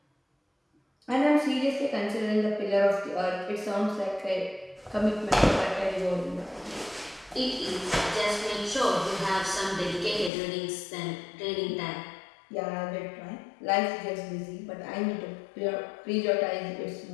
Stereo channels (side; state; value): right; drops out; at 10.3 s